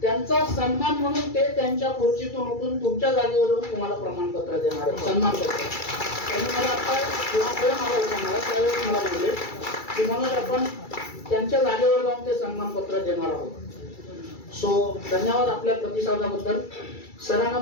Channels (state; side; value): late; right; 2.3 ms